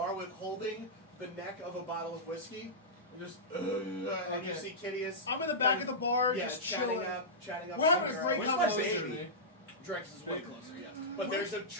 with holding the neck of a bottle of whiskey. And just, and you see Kitteus. I'm in the back of the bar, yeah, just chatting chilling. up. We're having a great Where's my conversation. baby? Drekas is way closer, yeah. But there's a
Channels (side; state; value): both; normal; correlation -0.13